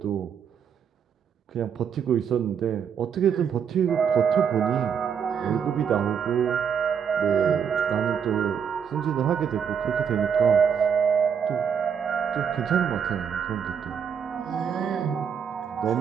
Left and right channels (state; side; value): quieter; left; 7.4 dB